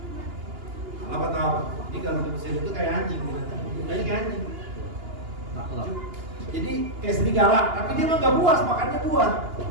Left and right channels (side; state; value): left; late; 2.9 ms